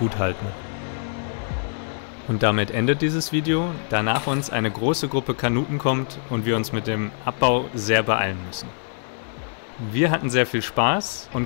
halten. Und damit endet dieses Video, da nach uns eine große Gruppe Kanuten kommt und wir uns mit dem Abbau sehr beeilen müssen. Wir hatten sehr viel Spaß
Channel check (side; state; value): right; silent; digital silence